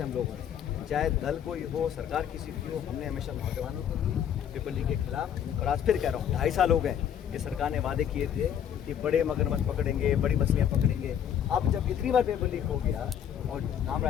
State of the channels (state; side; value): quieter; right; 9.3 dB